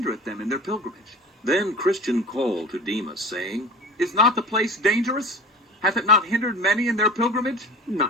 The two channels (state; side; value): normal; both; correlation 0.36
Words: them in their pilgrimage. Then Christian called to Demas, saying, Is not the place dangerous? Hath it not hindered many in their pilgrimage?